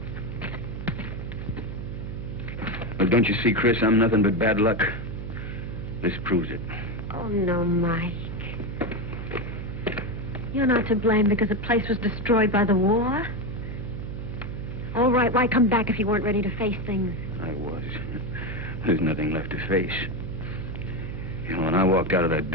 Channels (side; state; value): right; noise; hum, 7 dB below the sound